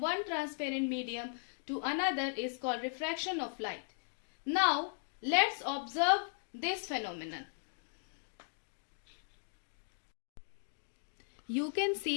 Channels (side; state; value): right; silent; digital silence